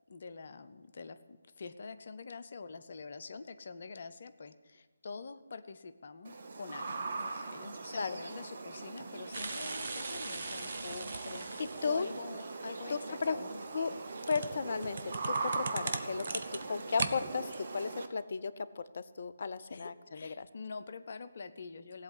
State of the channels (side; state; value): both; inverted; correlation -0.84